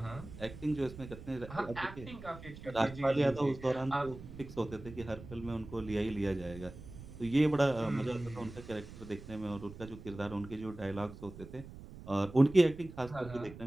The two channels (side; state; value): right; noise; rumble, 14 dB below the sound